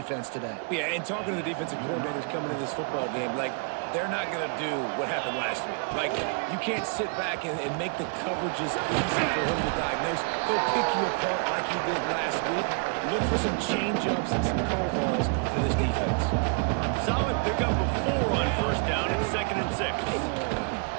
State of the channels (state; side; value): quieter; left; 38.1 dB